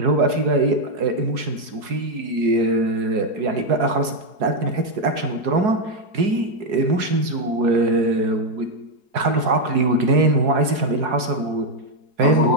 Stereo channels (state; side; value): late; left; 4.7 ms